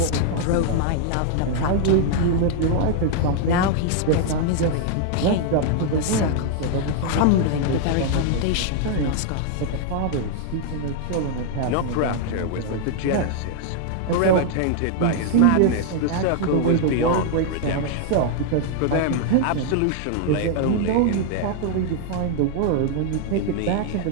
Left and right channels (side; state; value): both; different; correlation 0.00